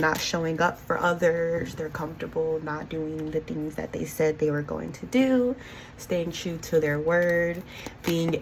showing up for others. They're comfortable not doing the things that they said they were going to do. Staying true to their word. Being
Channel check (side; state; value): both; identical; correlation 1.00